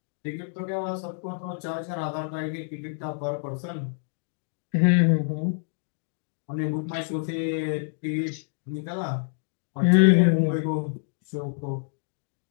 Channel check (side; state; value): right; silent; digital silence